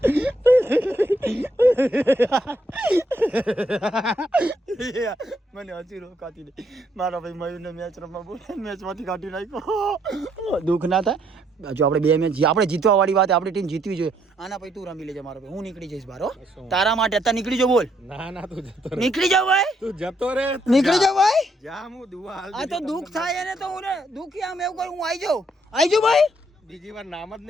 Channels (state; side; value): normal; both; correlation 0.72